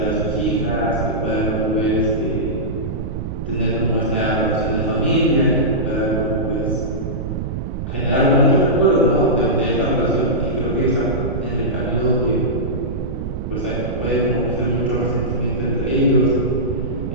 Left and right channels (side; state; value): right; noise; rumble, 5 dB below the sound